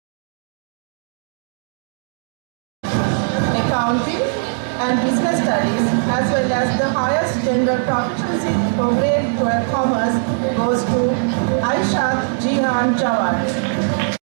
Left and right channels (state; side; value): silent; left; digital silence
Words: Accounting and Business Studies, as well as the highest general proficiency for grade 12 commerce goes to Aishat Jihan Jawad.